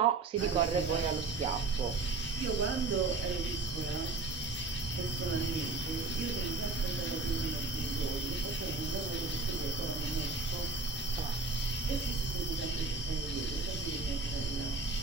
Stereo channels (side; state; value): left; quieter; 3.9 dB